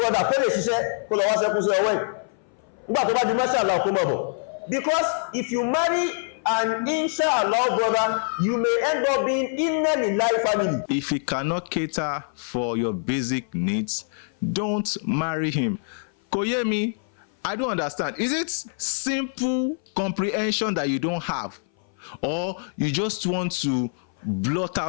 kó lè ṣiṣẹ́ kó lọ wá sẹ́kún sí ọwọ́ ẹ̀ nígbà tó bá di mashallah kó mọ̀ bọ̀. Because if you marry an inshallah brother, you may end up being in a life family. If he cannot cater for your basic needs, don't marry him. Koyemi, I don't understand. Is it simple comprehension that you don't have? Or you just want to blot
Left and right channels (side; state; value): right; silent; 58 dB below the other